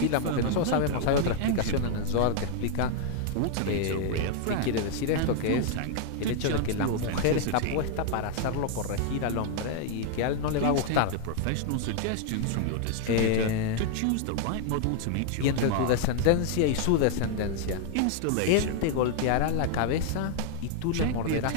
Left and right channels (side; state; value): both; different; correlation 0.00